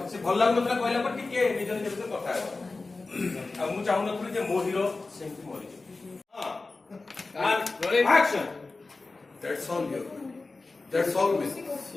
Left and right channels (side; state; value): right; quieter; 3.6 dB